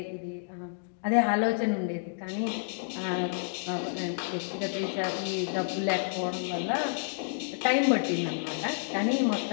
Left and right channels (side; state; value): right; silent; digital silence